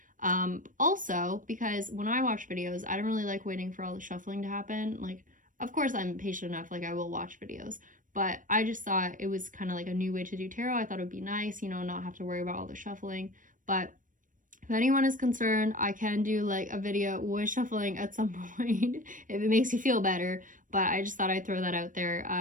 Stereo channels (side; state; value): left; late; 0.38 ms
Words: Also, because when I watch videos, I don't really like waiting for all the shuffling to happen. Like, of course, I'm patient enough, like, I will watch videos, but I just thought it was kind of like a new way to do tarot. I thought it would be nice, you know, not have to worry about all the shuffling. But if anyone is concerned, I can do like a video with shuffling at some point if it makes you feel better, but I just thought I'd throw that out there.